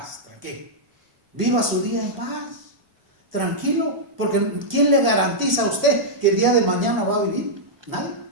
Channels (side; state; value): left; late; 1.4 ms